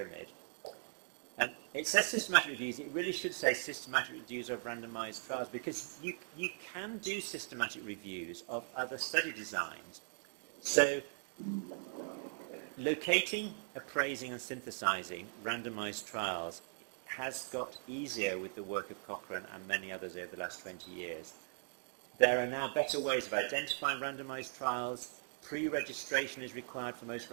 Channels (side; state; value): left; silent; digital silence